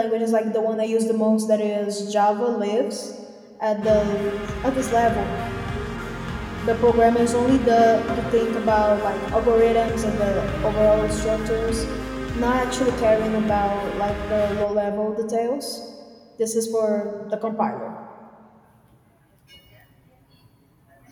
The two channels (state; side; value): identical; both; correlation 1.00